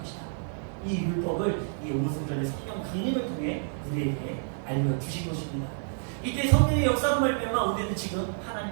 이 율법을 이 오순절의 성령 강림을 통해 우리에게 알려주신 것입니다. 이때 성령의 역사로 말미암아 우리는 지금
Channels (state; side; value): silent; left; digital silence